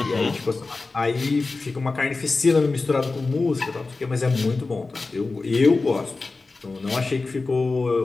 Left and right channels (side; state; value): right; quieter; 3.7 dB